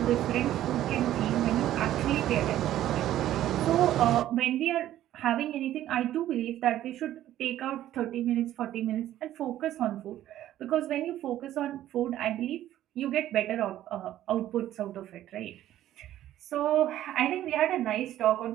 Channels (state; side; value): quieter; left; 12.9 dB